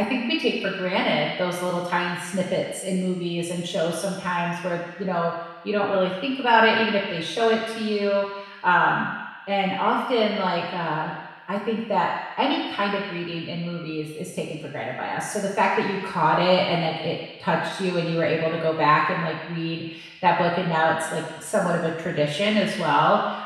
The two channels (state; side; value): identical; both; correlation 1.00